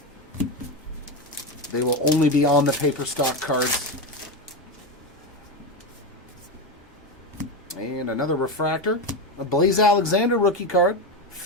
They will only be on the paper stock cards. And another refractor. A Blaze Alexander rookie card.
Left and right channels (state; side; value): normal; both; correlation 0.14